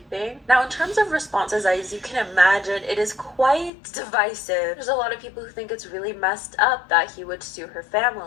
Now, in terms of responses, as you can imagine, it is quite divisive. There's a lot of people who think it's really messed up that he would sue her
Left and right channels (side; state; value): right; drops out; at 3.7 s